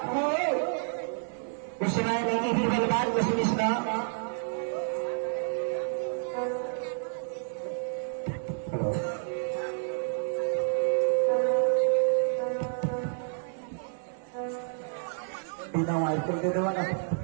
हो उस समय नहीं भी बलवान को सुनिश्ना बिना वायर कर दे देवा ना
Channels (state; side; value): silent; left; digital silence